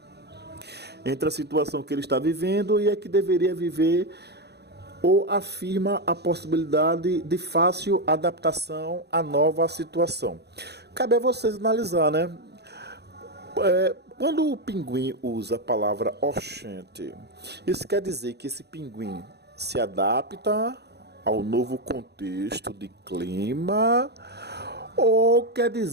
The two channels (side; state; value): left; late; 0.48 ms